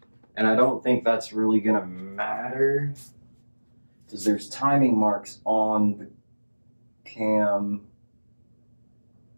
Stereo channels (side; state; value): both; inverted; correlation -1.00